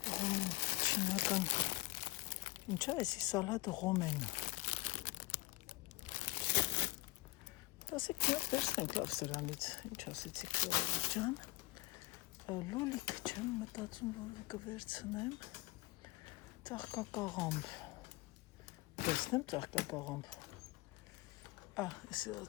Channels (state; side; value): quieter; right; 20.3 dB